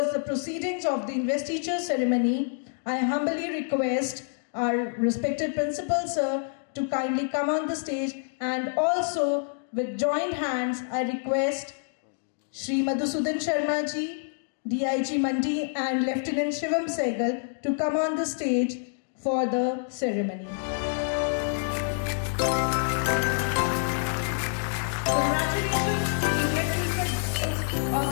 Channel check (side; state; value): right; silent; digital silence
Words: the proceedings of the investiture ceremony, I humbly request our respected principal, sir, to kindly come on the stage, and also with joined hands, I request Shri Madhusudan Sharma ji, DIG Mandi and Lieutenant Shivam Sehgal to come on the stage for the ceremony. Congratulations to the head teachers of